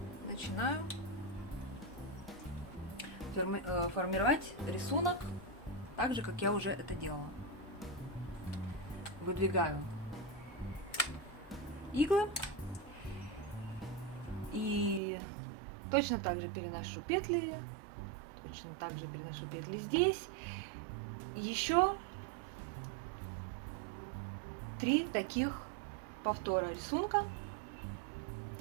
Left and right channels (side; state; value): left; drops out; at 15.0 s